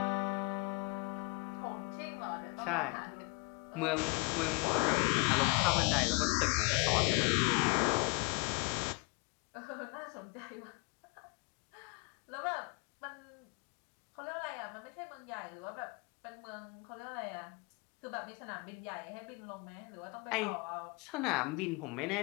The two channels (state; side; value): quieter; right; 29.4 dB